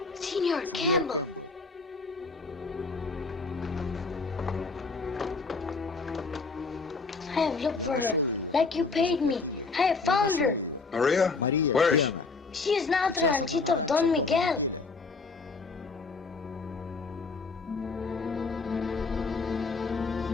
Senor Campbell. I have looked for her, like you paid me. I have found her. Maria? Where is she? She is now the ranchito of Don Miguel.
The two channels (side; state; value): right; quieter; 4.2 dB